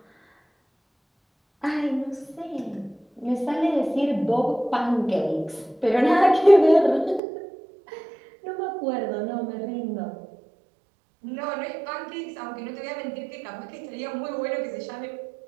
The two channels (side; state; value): left; drops out; at 7.2 s